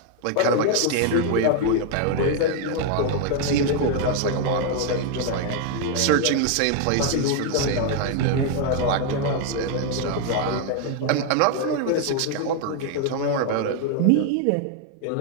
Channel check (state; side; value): different; both; correlation 0.00